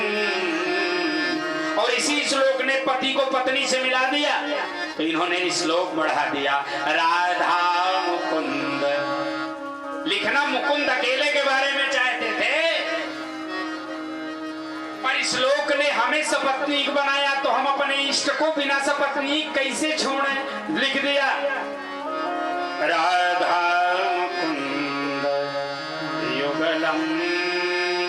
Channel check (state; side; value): identical; both; correlation 1.00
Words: और इसी श्लोक ने पति को पत्नी से मिला दिया, तो इन्होंने श्लोक बढ़ा दिया राधा मुकुंद। लिखना मुकुंद अकेले के बारे में चाहते थे, पर श्लोक ने हमें सपत्नीक बनाया, तो हम अपने इष्ट को बिना सपत्नीक कैसे छोड़ें? लिख दिया राधा मुकुंद युगलम